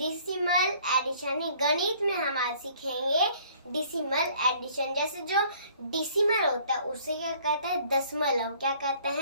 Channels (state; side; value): inverted; both; correlation -0.57